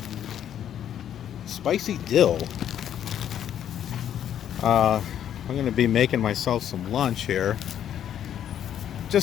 Spicy dill. I'm going to be making myself some lunch here.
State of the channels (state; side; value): quieter; right; 10.0 dB